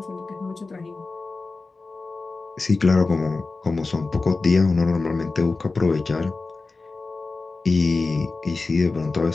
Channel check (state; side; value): quieter; right; 3.7 dB